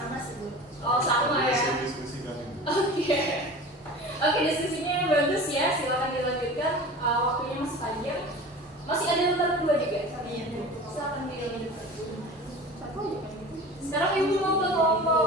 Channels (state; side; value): normal; both; correlation 0.36